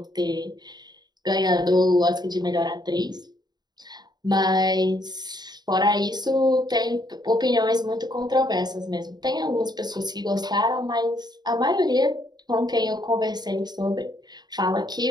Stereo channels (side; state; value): left; late; 0.20 ms